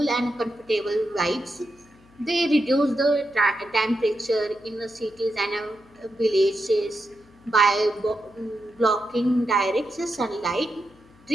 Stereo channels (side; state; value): left; noise; hum, 27 dB below the sound